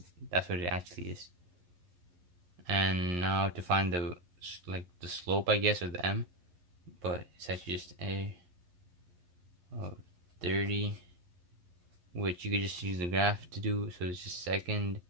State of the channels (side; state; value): left; late; 11 ms